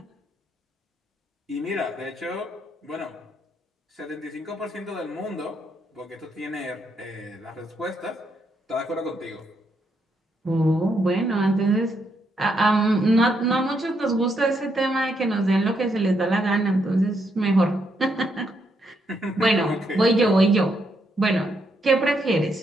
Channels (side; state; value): both; normal; correlation 0.77